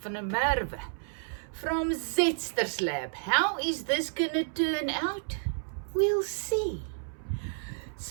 van der Merwe from Zetster's Lab. How is this gonna turn out? We'll see.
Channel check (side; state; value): left; silent; 57 dB below the other